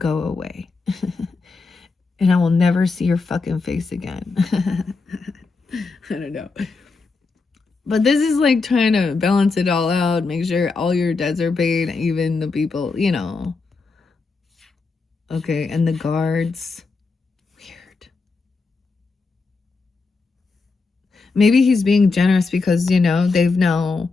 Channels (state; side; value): quieter; right; 4.1 dB